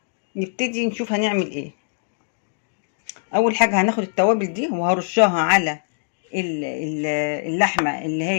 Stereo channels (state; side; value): silent; right; digital silence